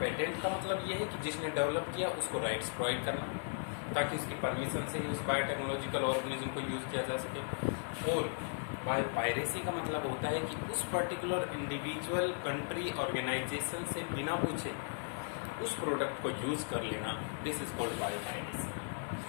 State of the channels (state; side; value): silent; right; digital silence